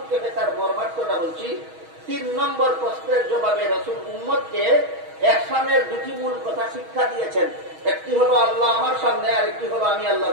তার মর্মার্থটা বলছি। 3 নম্বর প্রশ্নের জবাবে রাসূল উম্মতকে ইহসানের 2টি মূল কথা শিক্ষা দিয়েছেন। একটি হলো আল্লাহ আমার সামনে, আর একটি হলো আমি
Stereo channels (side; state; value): left; late; 6.3 ms